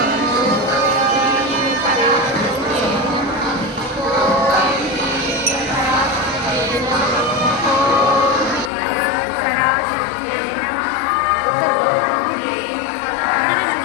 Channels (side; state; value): right; drops out; at 8.7 s